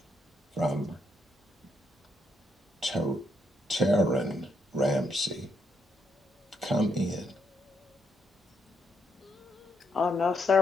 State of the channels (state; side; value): normal; both; correlation 0.76